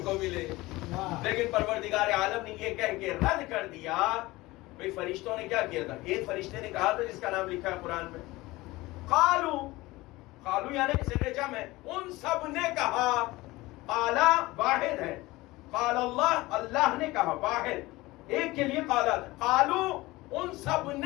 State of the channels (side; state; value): right; quieter; 20.0 dB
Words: کو ملے. لیکن پروردگار عالم نے یہ کہہ کے رد کر دیا. بھئی فرشتوں نے کیا کیا تھا؟ ایک فرشتے نے کہا تھا جس کا نام لکھا ہے قرآن میں, قالو یعنی صیغہ جمع ہے, ان سب نے کہا. قالا واحد ہے, قال اللہ اللہ نے کہا, واحد ایک کے لیے قالا. قالو ان سب